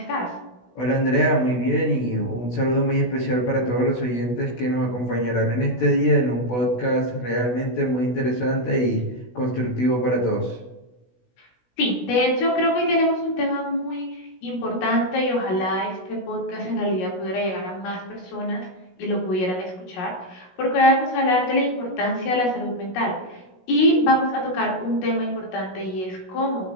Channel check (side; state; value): right; late; 16 ms